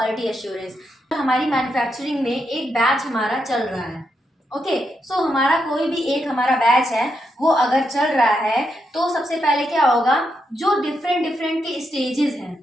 एश्योरेंस। हमारी मैन्युफैक्चरिंग में एक बैच हमारा चल रहा है, ओके। सो हमारा कोई भी एक हमारा बैच है वो अगर चल रहा है, तो सबसे पहले क्या होगा, जो डिफरेंट डिफरेंट के स्टेजेस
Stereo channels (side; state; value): both; normal; correlation 0.82